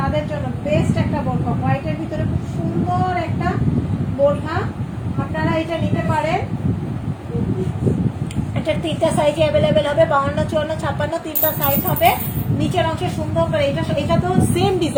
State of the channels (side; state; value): both; identical; correlation 1.00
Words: জন্য বেস্ট একটা বোরখা। হোয়াইটের ভিতরে খুব সুন্দর একটা বোরখা, আপনারা এটা নিতে পারেন। এটার তিনটা সাইজে অ্যাভেলেবেল হবে, 52, 54, 56 তিনটা সাইজ হবে। নিচের অংশে সুন্দর করে এটা তো সেম